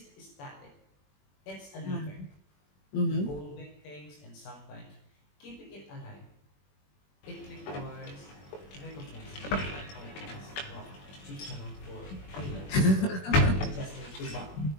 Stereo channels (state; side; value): late; right; 21 ms